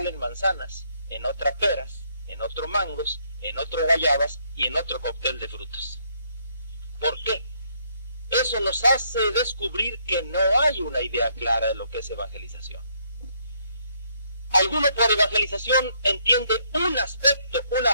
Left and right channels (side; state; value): both; inverted; correlation -0.71